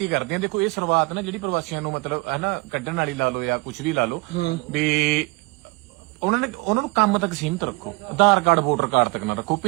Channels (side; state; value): left; quieter; 25.7 dB